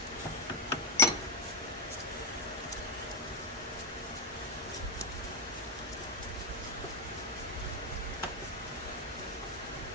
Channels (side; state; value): both; normal; correlation 0.05